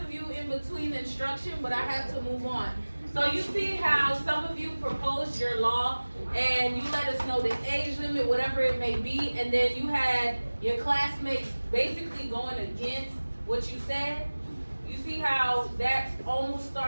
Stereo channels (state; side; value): inverted; both; correlation -1.00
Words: of you in between instruction, but I have to move on. So you see how some of you proposed your law and you let us know the age limit, whatever it may be, and then you had your classmates basically going against what you said. You see how that's almost